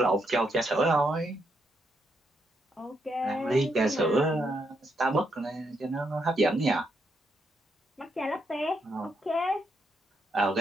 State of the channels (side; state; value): both; normal; correlation 0.78